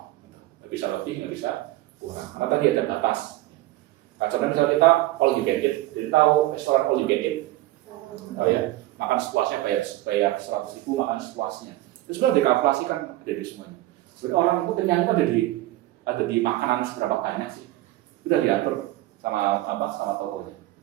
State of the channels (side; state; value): left; quieter; 16.8 dB